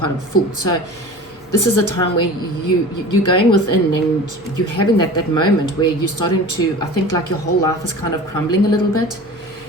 a fool. So this is a time where you're going within and you're having that moment where you're starting to, I think, like your whole life is kind of crumbling a little bit.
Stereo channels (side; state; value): both; normal; correlation 0.37